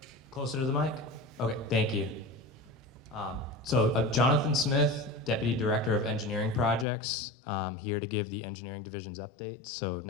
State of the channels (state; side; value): drops out; right; at 6.9 s